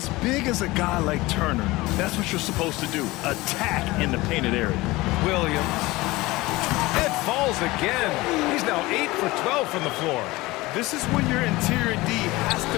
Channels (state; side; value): quieter; right; 20.4 dB